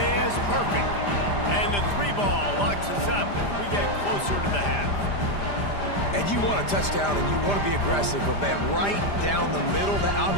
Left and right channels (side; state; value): right; late; 5.0 ms